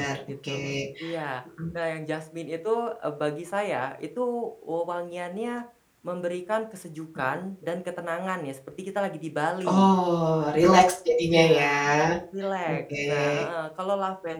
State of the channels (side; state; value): both; identical; correlation 1.00